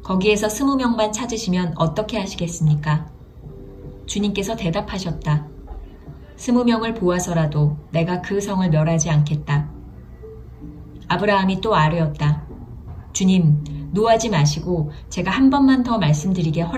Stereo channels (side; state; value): both; identical; correlation 1.00